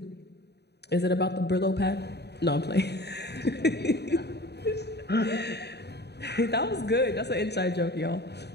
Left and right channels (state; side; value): late; right; 0.48 ms